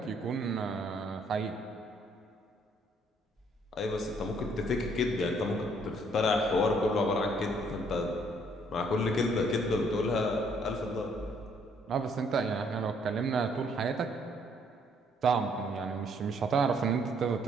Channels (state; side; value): normal; both; correlation 0.66